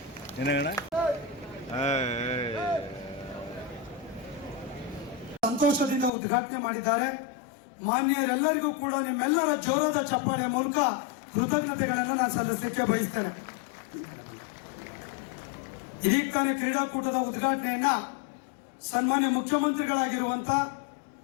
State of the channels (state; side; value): drops out; right; at 6.1 s